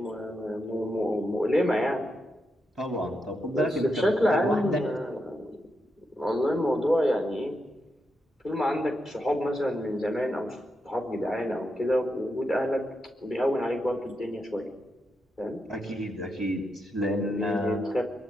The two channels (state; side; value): normal; both; correlation 0.85